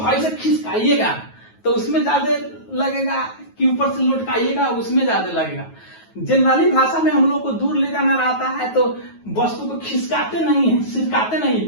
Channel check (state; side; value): late; right; 9.3 ms